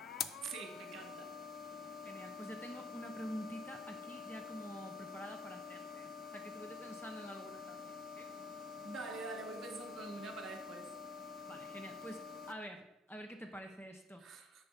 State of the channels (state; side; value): normal; both; correlation 0.63